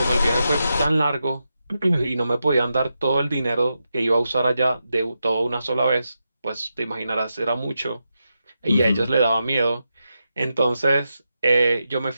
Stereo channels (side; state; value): both; inverted; correlation -0.88